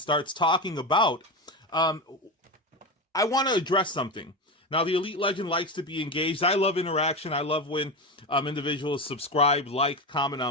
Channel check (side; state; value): both; normal; correlation 0.18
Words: talking about, I want to address something. Now, the Elite Legend likes to be engaged. I love interaction. I love when individuals subscribe, like, comment